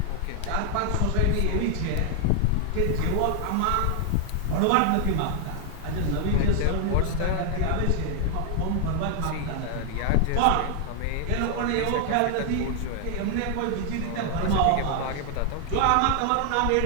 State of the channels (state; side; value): different; both; correlation 0.00